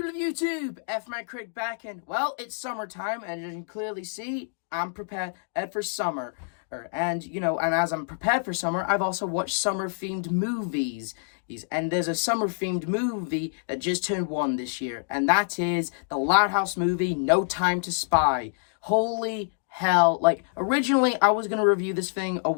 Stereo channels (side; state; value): right; silent; digital silence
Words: of YouTube? CRITIC back, and well, it's summertime, and as you can clearly see, I'm prepared for summer. And as I'm prepared for summer, I've also watched summer-themed movies. And there's a summer-themed movie that just turned 1 this year, and that is the Loud House movie, No Time to Spy. Holy hell, like, originally, I was gonna review this thing a